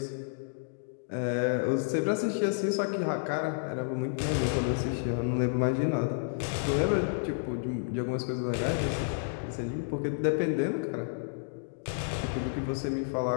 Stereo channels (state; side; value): silent; right; digital silence